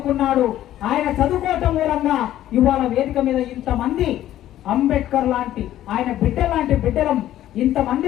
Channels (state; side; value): quieter; right; 12.9 dB